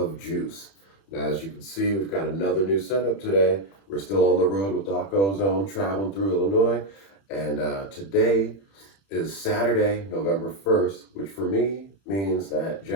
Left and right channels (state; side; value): late; right; 31 ms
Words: Juice. Now, as you can see, we've got another new setup today. We're still on the road with Doc Ozone, traveling through Illinois, and today is Saturday, November 1st, which for me means that